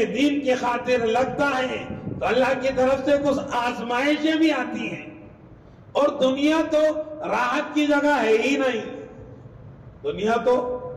دین کی خاطر لگتا ہے تو اللہ کی طرف سے کچھ آزمائشیں بھی آتی ہیں. اور دنیا تو راحت کی جگہ ہے ہی نہیں. دنیا تو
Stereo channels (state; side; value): identical; both; correlation 1.00